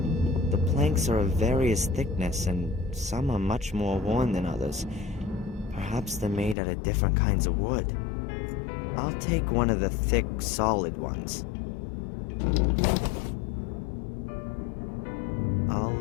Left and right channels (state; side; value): drops out; right; at 6.6 s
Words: The planks are of various thickness, and some are much more worn than others. Perhaps they're made out of different kinds of wood. I'll take one of the thick, solid ones. I'll